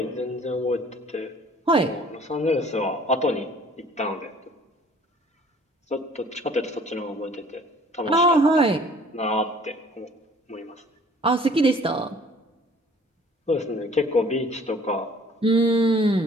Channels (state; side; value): normal; both; correlation 0.53